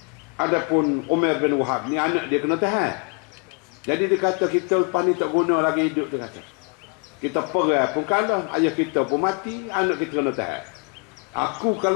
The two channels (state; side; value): quieter; right; 36.4 dB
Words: Adapun Umar bin Wahab ni anak dia kena tahan. Jadi dia kata kita lepas ni tak guna lagi hidup, dia kata. Kita perang pun kalah, ayah kita pun mati, anak kita kena tahan. Aku